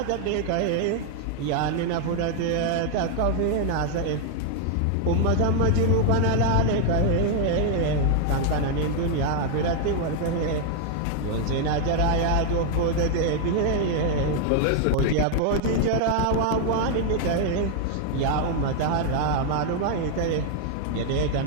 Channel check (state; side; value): different; both; correlation 0.00